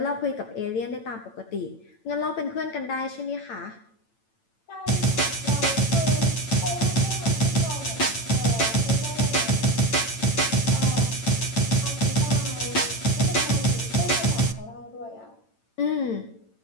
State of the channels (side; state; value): right; late; 8.9 ms